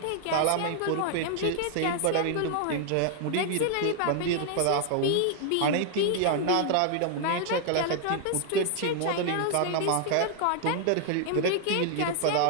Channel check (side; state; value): both; different; correlation 0.00